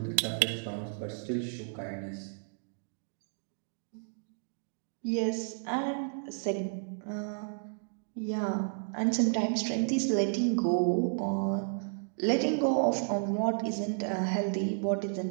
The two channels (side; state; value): left; silent; digital silence